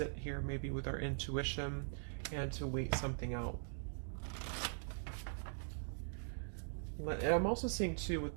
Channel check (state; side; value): silent; left; digital silence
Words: here maybe with our intuition and to wait something out. I'm also seeing too with